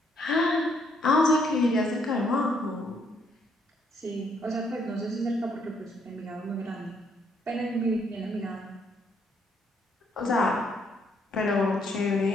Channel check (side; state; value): both; normal; correlation 0.71